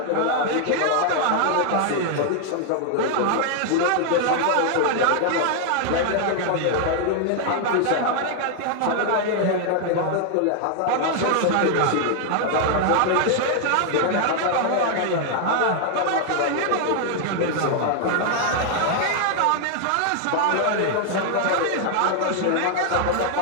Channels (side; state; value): both; different; correlation 0.00